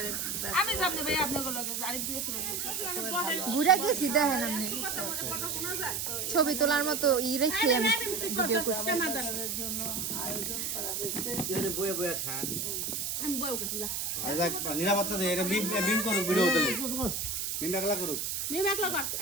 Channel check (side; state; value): right; noise; hiss, 2 dB below the sound